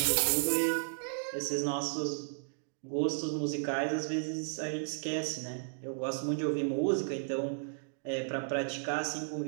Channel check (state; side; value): silent; left; digital silence